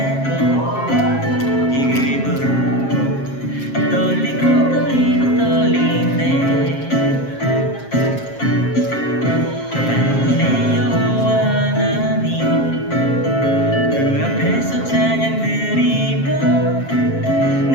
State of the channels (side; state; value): right; late; 7.4 ms